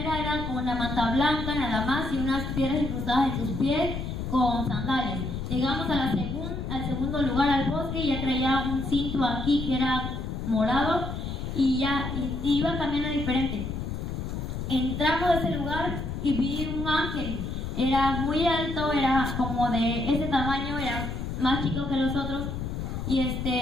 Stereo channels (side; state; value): left; noise; rumble, 5 dB below the sound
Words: era con una manta blanca nada más y unas piedras incrustadas en sus pies con sandalias. Llegamos al segundo lugar, al bosque, y ya traía un cinto aquí que era morado y iba caminando diferente. Entramos a ese lugar y vi un ángel. Era muy alto, era como de ese tamaño, era más chico que los otros